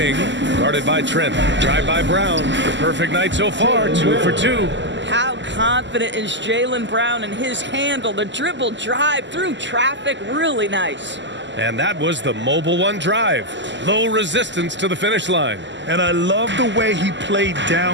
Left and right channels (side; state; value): left; late; 0.53 ms